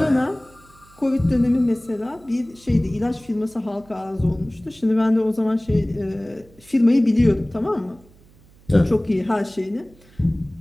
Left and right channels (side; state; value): right; noise; hum, 27 dB below the sound